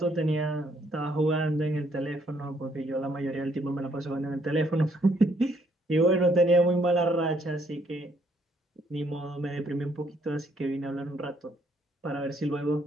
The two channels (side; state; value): both; normal; correlation 0.69